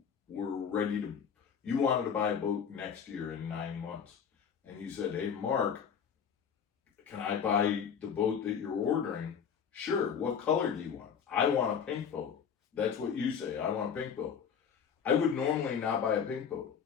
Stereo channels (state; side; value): quieter; right; 7.2 dB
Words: wanted to buy a boat next year in 9 months, and you said, hey Mark, can I buy the boat that you're ordering? Sure, what color do you want? I want a pink boat. That's what you say, I want a pink boat. I would normally not buy a pink boat,